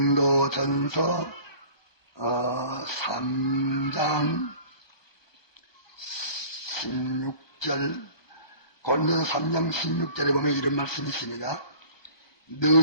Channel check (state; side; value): late; right; 1.2 ms